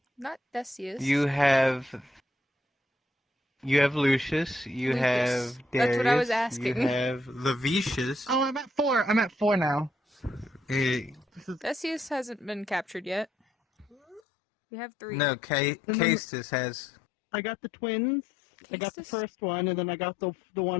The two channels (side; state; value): right; drops out; at 14.2 s